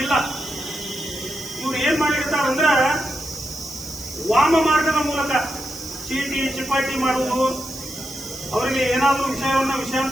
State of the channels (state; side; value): noise; right; hiss, 14 dB below the sound